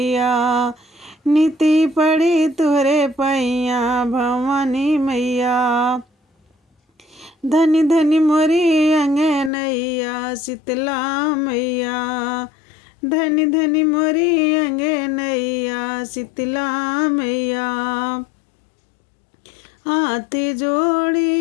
नीति पड़ी तुहरे पैया भवानी मैया। धनी धनी मोरी अंगनैया शीतला मैया, धनी धनी मोरी अंगनैया शीतला मैया। हाथ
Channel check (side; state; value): right; drops out; at 9.5 s